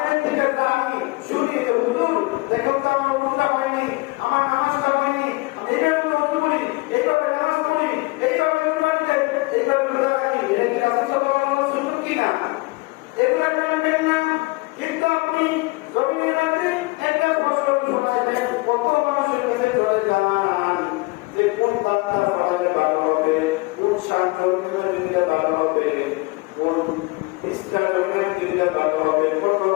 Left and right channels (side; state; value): right; quieter; 24.0 dB